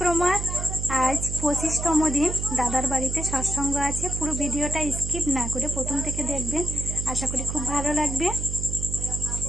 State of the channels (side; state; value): right; noise; hum, 4 dB below the sound